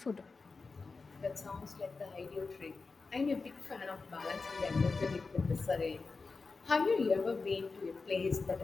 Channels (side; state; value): right; quieter; 4.2 dB